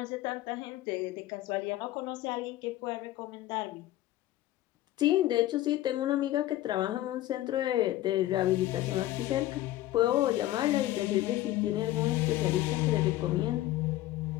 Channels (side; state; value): right; quieter; 15.2 dB